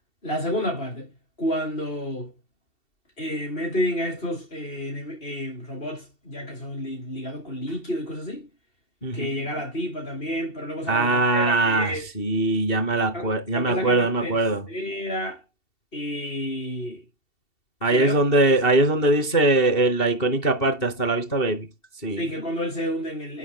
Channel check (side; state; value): right; late; 2.7 ms